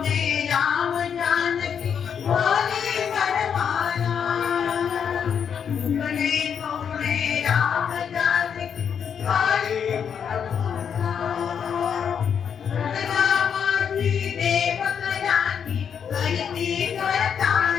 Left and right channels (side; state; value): right; quieter; 7.5 dB